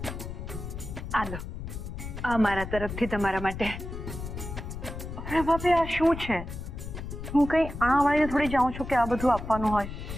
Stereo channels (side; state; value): left; noise; rumble, 8 dB below the sound